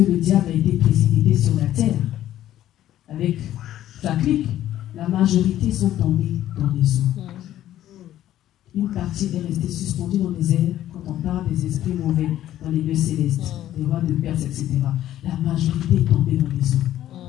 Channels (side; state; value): right; quieter; 12.7 dB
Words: diable a été précipité sur la terre, avec sa clique, la majorité sont tombés dans les eaux. Une partie est restée suspendue dans les airs quand on parle des esprits mauvais dans les lieux célestes, des rois de Perse, etc. La majorité est tombée dans les